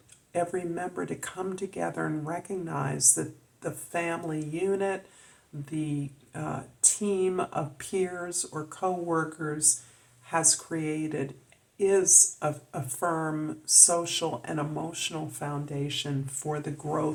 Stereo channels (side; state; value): both; identical; correlation 1.00